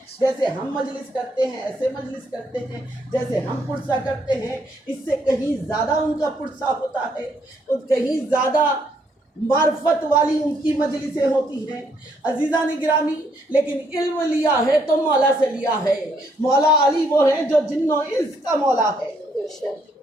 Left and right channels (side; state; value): both; normal; correlation 0.71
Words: جیسے ہم مجلس کرتے ہیں ایسے مجلس کرتے ہیں، جیسے ہم پرسہ کرتے ہیں اس سے کہیں زیادہ ان کا پرسہ ہوتا ہے، اور کہیں زیادہ معرفت والی ان کی مجلسیں ہوتی ہیں۔ عزیزان گرامی، لیکن علم لیا ہے تو مولا سے لیا ہے۔ مولا علی وہ ہیں جو جن و انس کا مولا ہے،